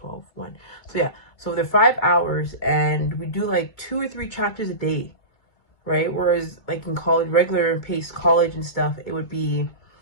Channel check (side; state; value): right; late; 2.3 ms